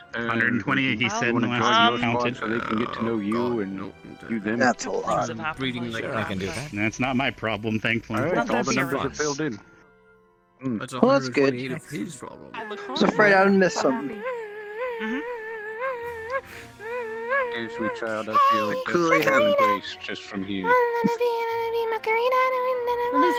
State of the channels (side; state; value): both; identical; correlation 1.00